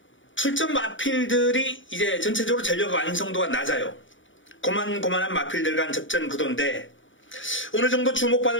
출전 마필들이 이제 전체적으로 전력 완성도가 낮아요. 고만고만한 마필들 간 접전 구도인데, 어느 정도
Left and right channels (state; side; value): late; right; 0.56 ms